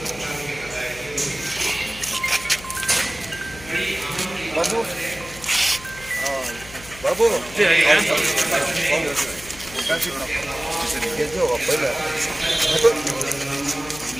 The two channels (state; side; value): noise; left; hum, 17 dB below the sound